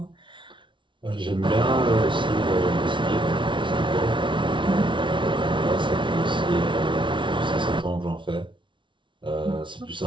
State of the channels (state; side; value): late; left; 0.24 ms